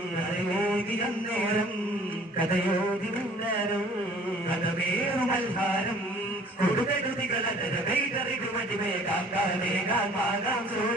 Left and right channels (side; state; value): both; normal; correlation 0.52